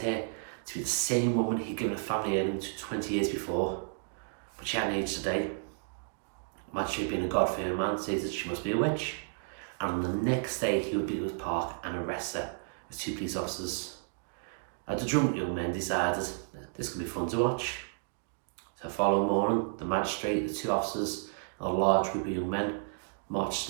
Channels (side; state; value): left; silent; digital silence